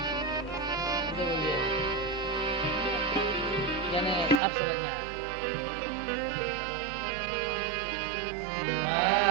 यानी अब समझ में आया।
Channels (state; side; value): drops out; left; at 4.4 s